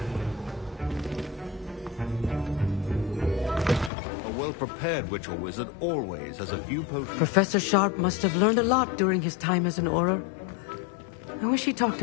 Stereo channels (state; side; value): drops out; right; at 3.9 s